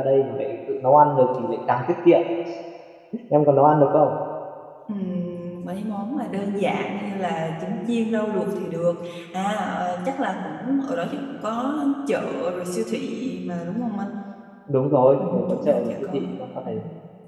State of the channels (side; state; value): both; identical; correlation 1.00